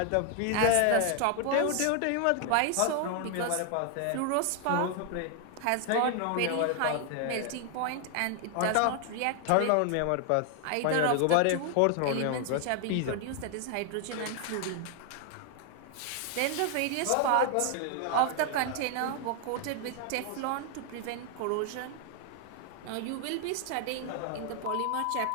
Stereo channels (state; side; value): different; both; correlation 0.00